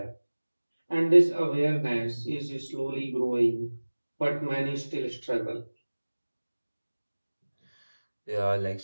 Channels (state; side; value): inverted; both; correlation -1.00